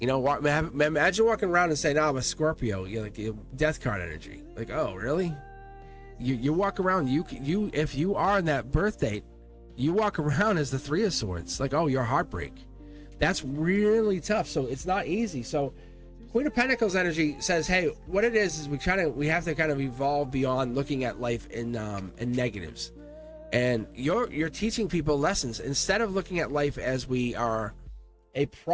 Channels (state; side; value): identical; both; correlation 1.00